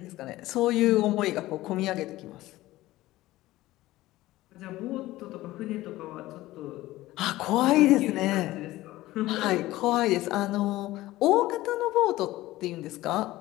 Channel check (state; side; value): quieter; right; 17.0 dB